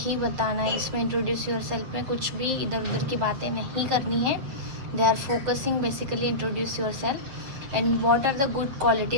बताना है। इसमें इंट्रोड्यूस यूर सेल्फ में कुछ भी इधर उधर की बातें नहीं करनी है। They are focusing basically introduce yourself and what are the good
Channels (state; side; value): late; left; 7.6 ms